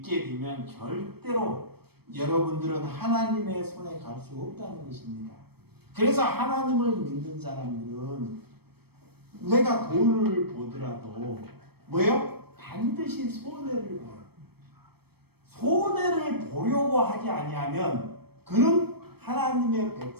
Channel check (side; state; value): left; late; 0.97 ms